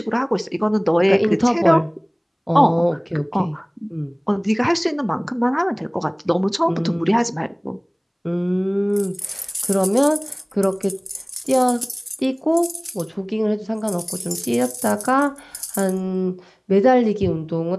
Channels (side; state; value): both; identical; correlation 1.00